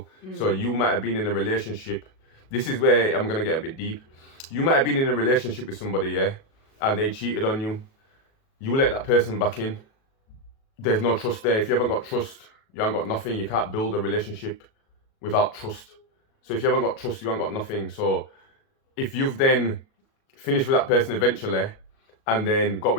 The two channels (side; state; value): right; late; 37 ms